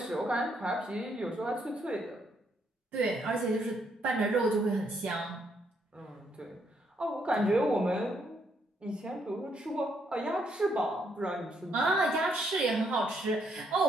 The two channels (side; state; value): both; normal; correlation 0.74